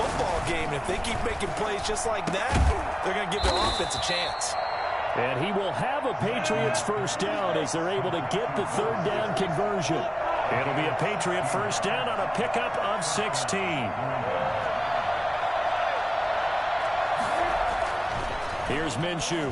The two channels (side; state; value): both; identical; correlation 1.00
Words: game. And if they keep making plays just like that, they're going to give their offense a chance. And he will have a Patriots 1st down as they're able to get the 3rd down conversion. It'll be a Patriot 1st down on a pickup of 16. Here's Minshew.